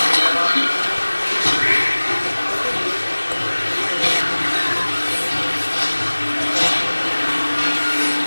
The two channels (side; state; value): both; inverted; correlation -1.00